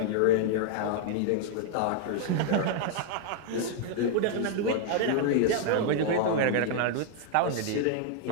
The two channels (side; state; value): both; different; correlation 0.00